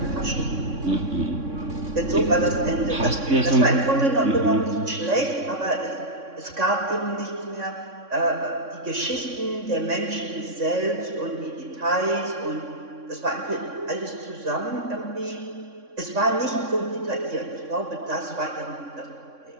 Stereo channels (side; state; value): left; late; 3.6 ms